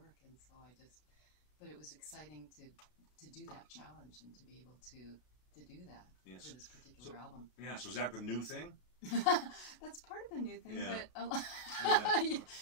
And so but it was exciting to do that challenge and to be able to do that for this particular album. Yeah, so is that the new thing? That's part of the new thing, but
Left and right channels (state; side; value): late; right; 33 ms